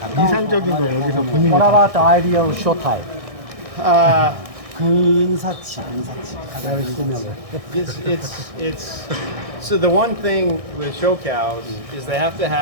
이상적인 거 여기서 본인이 What about the ideal show type? 근사치 가장 It's so the one thing with show cows is they have to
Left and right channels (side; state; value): left; late; 1.6 ms